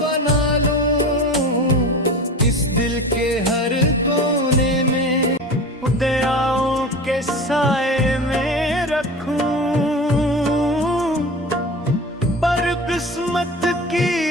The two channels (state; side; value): normal; both; correlation 0.33